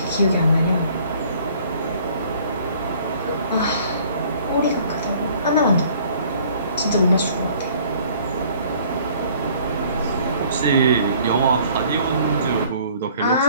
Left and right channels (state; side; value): inverted; both; correlation -0.56